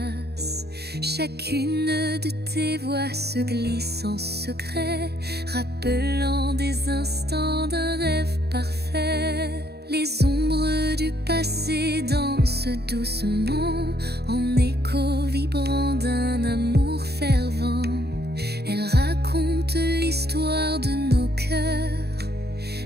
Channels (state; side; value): late; left; 0.47 ms